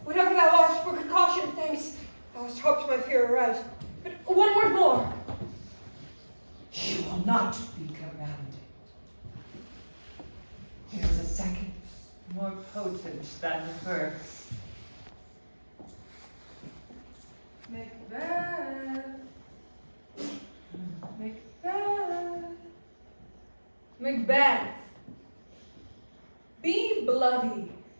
Whatever thou art, for precaution, thanks. Thou hast hoped my fear aright. But one word more. She will not be commanded. There is a second, more potent than the first. Macbeth. Macbeth. Macbeth. Be bloody,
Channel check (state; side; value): inverted; both; correlation -1.00